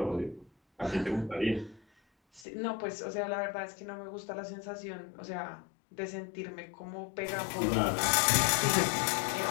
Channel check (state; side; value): drops out; right; at 2.5 s